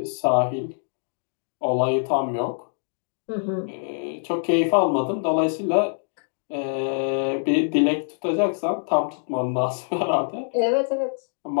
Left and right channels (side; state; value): right; silent; digital silence